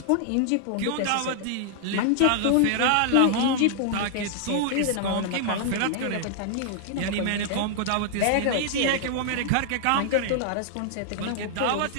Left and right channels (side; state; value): both; different; correlation -0.01